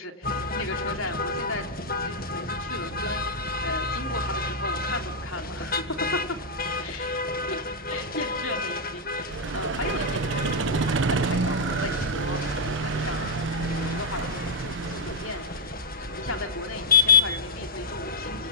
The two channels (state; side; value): normal; both; correlation -0.06